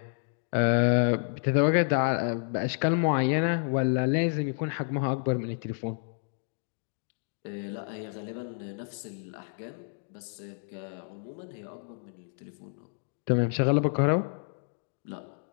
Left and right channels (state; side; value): silent; right; 58 dB below the other